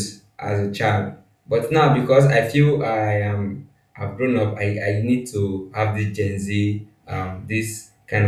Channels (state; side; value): identical; both; correlation 1.00